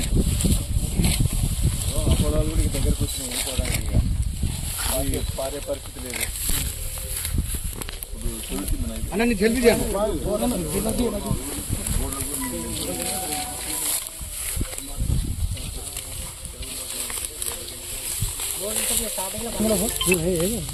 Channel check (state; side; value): identical; both; correlation 1.00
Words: పొలాలు కూడా దగ్గరకు వచ్చినాయి పోవడానికి పారే పరిస్థితి లేదు. అన్న నీ జల్దీ చేయాలి.